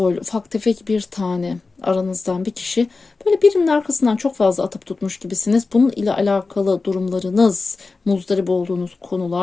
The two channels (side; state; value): right; quieter; 4.0 dB